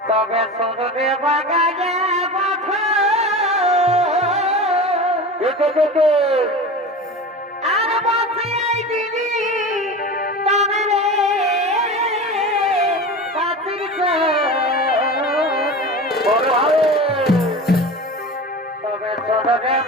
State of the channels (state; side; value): normal; both; correlation 0.31